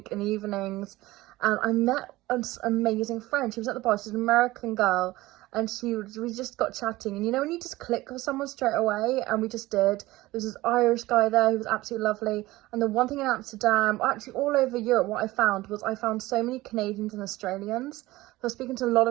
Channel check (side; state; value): left; quieter; 18.4 dB